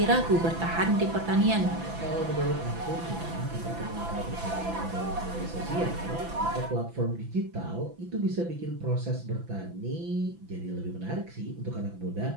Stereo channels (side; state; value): left; late; 5.9 ms